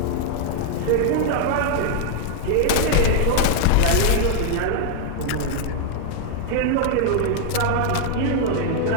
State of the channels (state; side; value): different; both; correlation 0.00